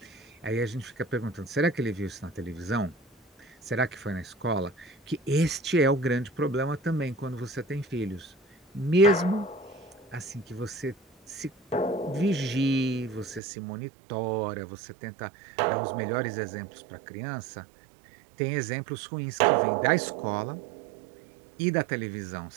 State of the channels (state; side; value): drops out; left; at 13.4 s